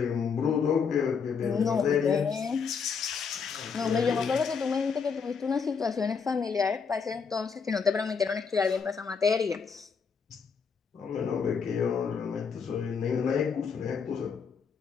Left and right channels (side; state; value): right; quieter; 5.9 dB